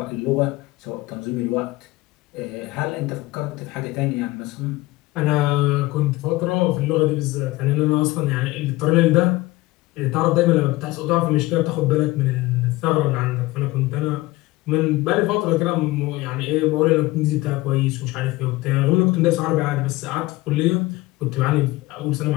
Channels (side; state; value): right; quieter; 19.6 dB